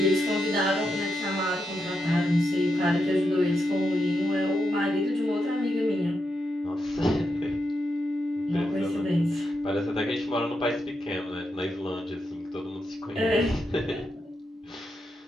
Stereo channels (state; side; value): normal; both; correlation 0.85